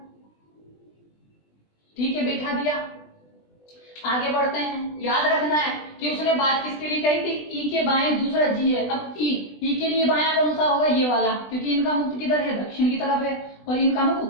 ठीक है, बैठा दिया। आगे बढ़ते हैं। याद रखना है कि उसने बात किसके लिए कही थी? ई के बाएं दूसरा जी है। अब ई के लिए बायां कौन सा होगा? ये वाला, क्योंकि इनका मुख किधर है? दक्षिण की तरफ है, और इनका मुख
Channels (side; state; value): right; late; 20 ms